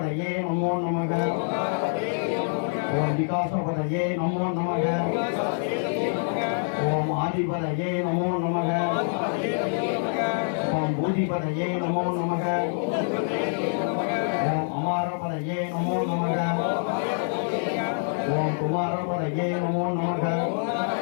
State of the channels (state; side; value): silent; right; digital silence